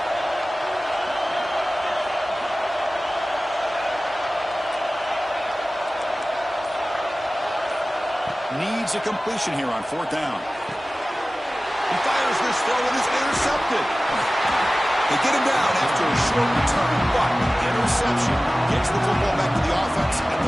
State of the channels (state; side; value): normal; both; correlation 0.97